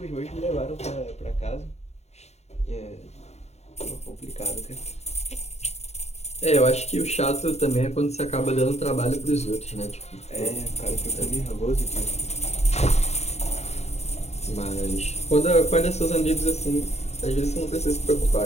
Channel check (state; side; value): late; right; 0.32 ms